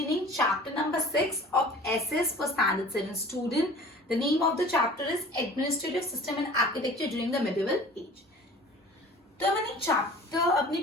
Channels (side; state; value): both; normal; correlation 0.44